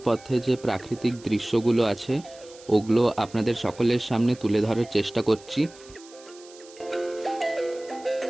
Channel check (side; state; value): right; noise; hiss, 22 dB below the sound